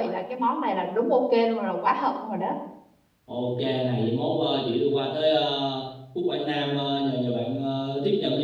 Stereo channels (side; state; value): both; identical; correlation 1.00